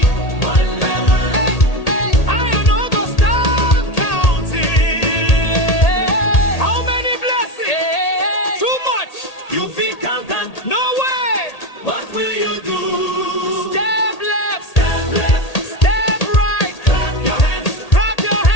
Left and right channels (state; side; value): late; right; 1.8 ms